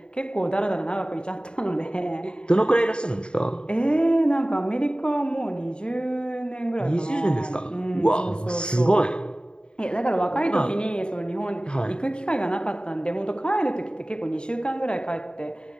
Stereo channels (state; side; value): late; right; 0.050 ms